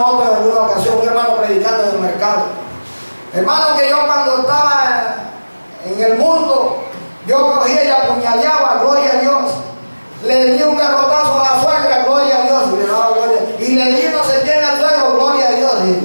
Otto en alguna ocasión, un hermano predicando en el mercado: hermano, que yo cuando estaba en el mundo, yo cogía y apuñaleaba, gloria a Dios. Le di un garrotazo a la suegra, gloria a Dios. Y le di no sé quién al suegro, gloria a Dios.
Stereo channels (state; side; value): inverted; both; correlation -1.00